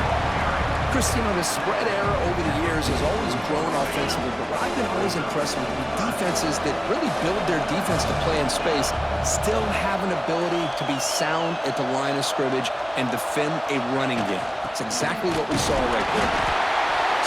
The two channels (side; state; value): both; identical; correlation 1.00